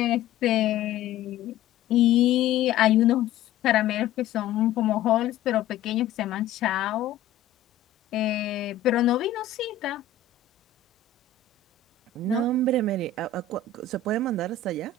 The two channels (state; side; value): quieter; right; 7.3 dB